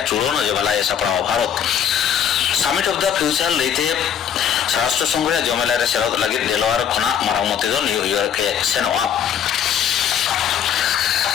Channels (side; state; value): right; quieter; 8.7 dB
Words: चूड़न जमला ए सपड़ा Bharat summit of the future लेते राष्ट्र संघ रे जमला रे सेलद लागि भेलोआर खना मरामती दो न्यूयॉर्क के सेनोआ